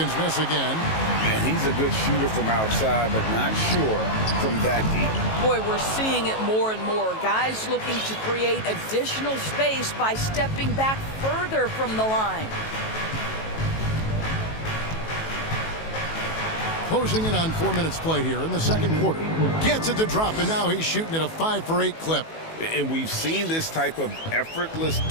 miss again. And he's a good shooter from outside, but not sure from that deep. Boy, we're seeing it more and more. Guys looking to create additional space by stepping back further from the line. Closing in on 4 minutes played here in the second quarter. Gets it to drop, and now he's shooting at a 5-for-8 clip. And we've seen this type of effortless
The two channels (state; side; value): late; right; 18 ms